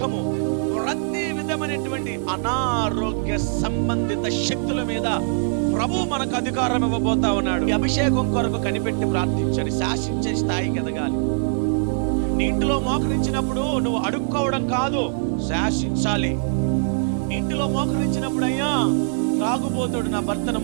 ప్రతి విధమైనటువంటి అనారోగ్య సంబంధిత శక్తుల మీద ప్రభు మనకు అధికారం ఇవ్వబోతా ఉన్నాడు. ఈ అభిషేకం కొరకు కనిపెట్టి ప్రార్థించండి. శాసించే స్థాయికి ఎదగాలి. నీ ఇంటిలో మోకరించినప్పుడు నువ్వు అడుక్కోవడం కాదు, శాసించాలి. ఇంటిలో మోకరించినప్పుడు అయ్యా తాగుబోతుడు నా భర్తను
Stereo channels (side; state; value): left; silent; digital silence